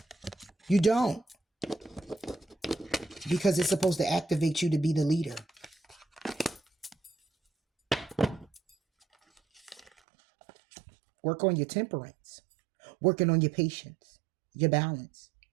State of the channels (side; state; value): left; drops out; at 9.9 s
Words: You don't. Because it's supposed to activate you to be the leader. Work on your temperance. Working on your patience, your balance,